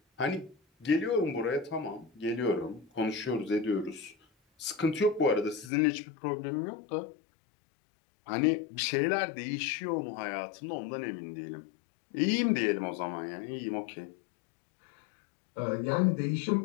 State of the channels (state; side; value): drops out; right; at 5.7 s